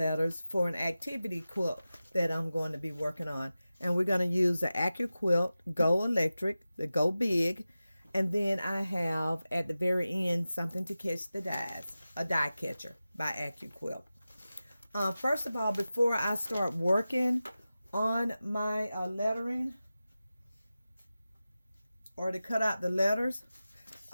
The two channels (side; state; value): both; inverted; correlation -0.94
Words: for an activity quilt that I'm going to be working on. And we're going to use the AccuQuilt GO electric, the Go Big. And then I have at the very end something to catch the dies, a die catcher by AccuQuilt. First of all, before I start working on my lettering, or to cut out the letters,